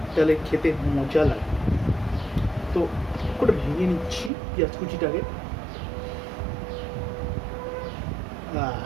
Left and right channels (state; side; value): drops out; left; at 4.3 s